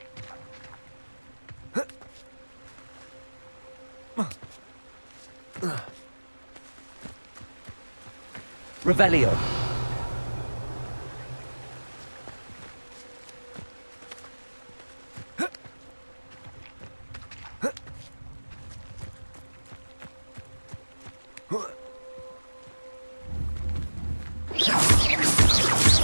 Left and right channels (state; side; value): inverted; both; correlation -1.00